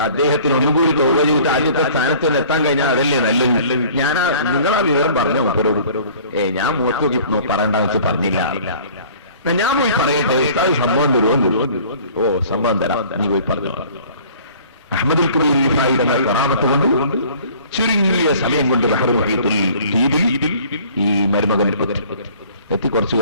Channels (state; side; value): inverted; both; correlation -0.50